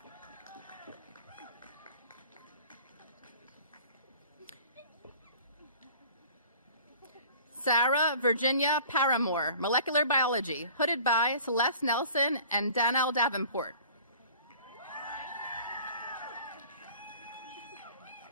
Sarah Virginia Paramore, molecular biology, hooded by Celeste Nelson and Danielle Davenport.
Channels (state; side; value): inverted; both; correlation -0.46